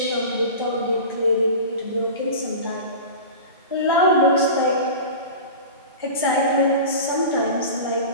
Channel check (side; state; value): both; inverted; correlation -0.33